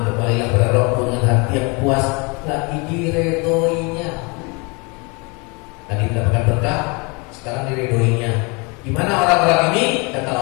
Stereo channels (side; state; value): right; quieter; 30.1 dB